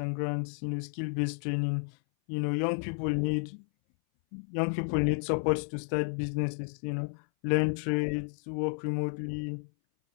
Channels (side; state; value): right; silent; 57 dB below the other